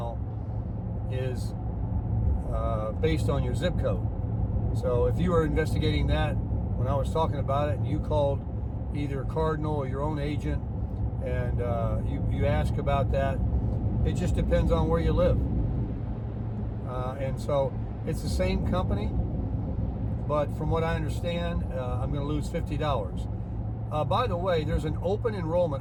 is based on your zip code. So if you were investigating that when I was talking about it, and you called either Cardinal or your own agent, and you ask about that, it just depends on where you live. And so it's the same company, but from what I understand, I'm going to lose $50. By the way, there's an open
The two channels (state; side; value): identical; both; correlation 1.00